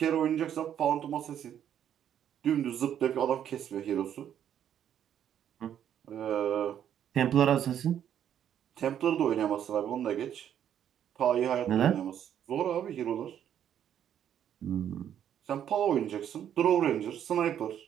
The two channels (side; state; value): left; quieter; 9.8 dB